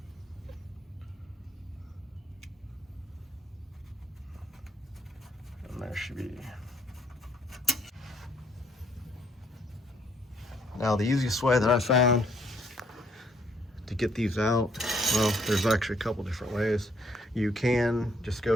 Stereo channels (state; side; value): normal; both; correlation 0.68